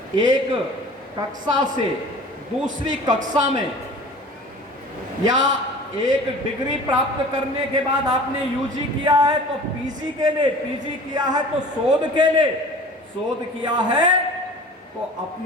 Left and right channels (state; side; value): normal; both; correlation 0.42